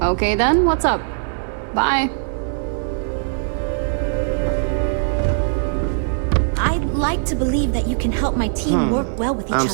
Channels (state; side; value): silent; left; digital silence